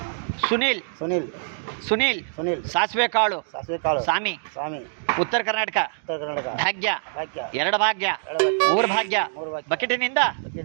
ಸುನೀಲ್ ಸಾಸಿವೆ ಕಾಳು ಸ್ವಾಮಿ ಉತ್ತರ ಕರ್ನಾಟಕ ಭಾಗ್ಯ 2 ಭಾಗ್ಯ 3 ಭಾಗ್ಯ ಬಕೆಟಿನಿಂದ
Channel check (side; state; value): left; silent; digital silence